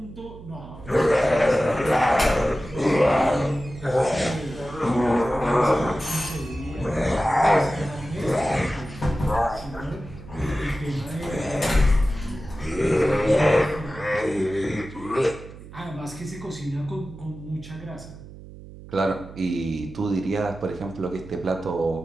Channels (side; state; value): right; noise; hum, 16 dB below the sound